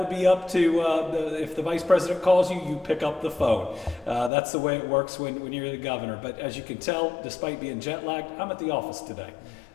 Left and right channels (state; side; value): drops out; right; at 4.3 s